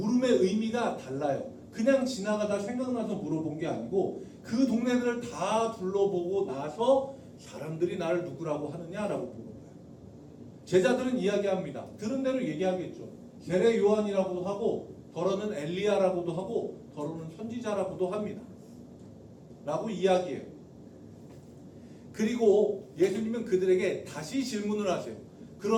의미가 달라요. 그냥 지나가다 생각나서 물어본 게 아니고 그 동네들을 다 둘러보고 나서 사람들이 나를 누구라고 하느냐라고 물어본 거예요. 제자들은 이야기합니다. 들은 대로 얘기하겠죠. 세례 요한이라고도 하고 더러는 엘리야라고도 하고 더러는 선지자라고도 합니다. 라고 이야기해요. 그리고 예수님은 그들에게 다시 질문을 하세요.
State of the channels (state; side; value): identical; both; correlation 1.00